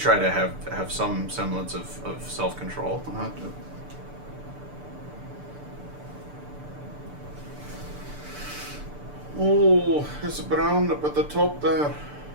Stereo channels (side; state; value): left; late; 6.8 ms